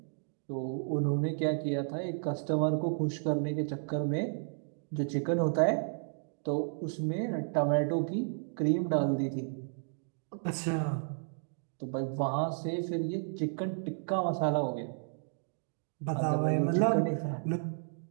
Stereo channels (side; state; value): left; silent; digital silence